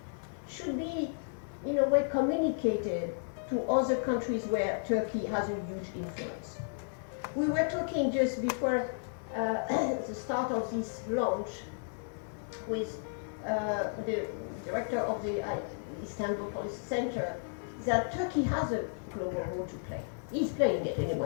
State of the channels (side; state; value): right; silent; 56 dB below the other